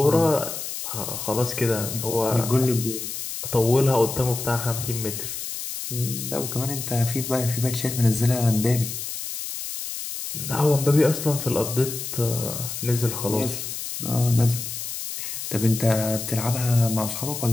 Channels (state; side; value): noise; left; hiss, 6 dB below the sound